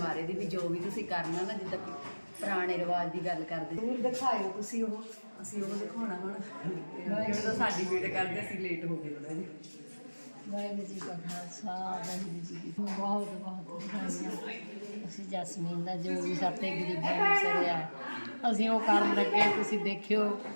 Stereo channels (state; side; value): inverted; both; correlation -1.00